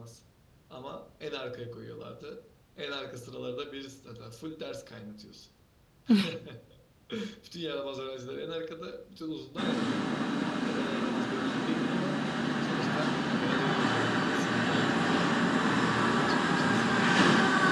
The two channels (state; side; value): identical; both; correlation 1.00